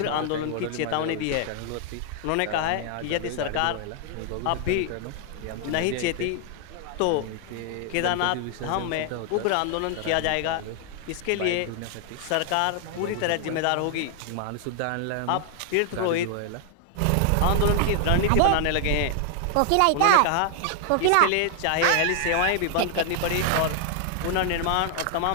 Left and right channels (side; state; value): both; different; correlation 0.00